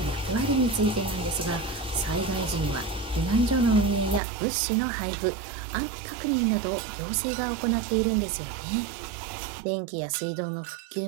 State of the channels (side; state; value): left; drops out; at 4.2 s